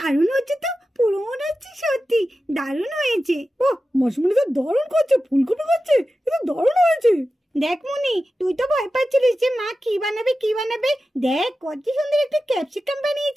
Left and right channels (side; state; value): both; normal; correlation 0.93